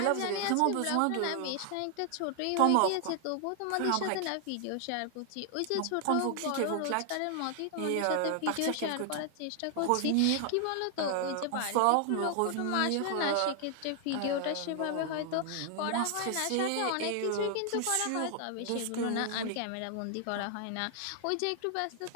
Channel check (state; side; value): different; both; correlation 0.00